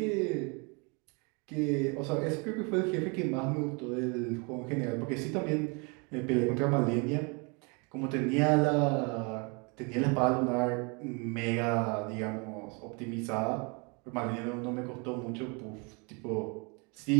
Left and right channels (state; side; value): quieter; left; 32.1 dB